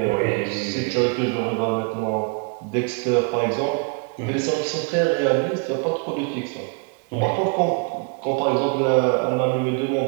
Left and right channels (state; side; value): quieter; left; 35.1 dB